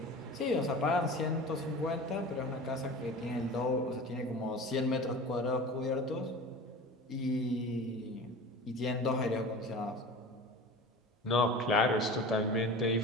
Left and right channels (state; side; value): normal; both; correlation 0.35